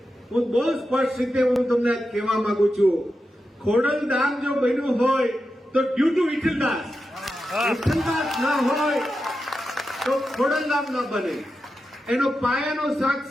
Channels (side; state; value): both; normal; correlation 0.89